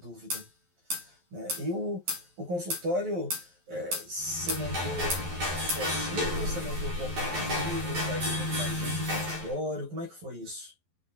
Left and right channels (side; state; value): left; late; 11 ms